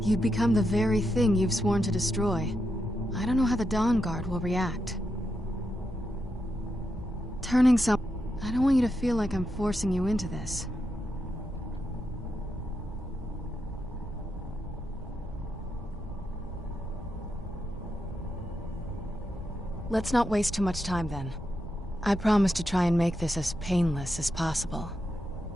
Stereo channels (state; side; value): normal; both; correlation 0.85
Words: You'd become the very thing you've sworn to destroy. I don't know how the Dawn Guard will react. I don't want you to feel like I'm forcing you into this. Let's not waste too much time then. I promise to try and make this as painless as possible.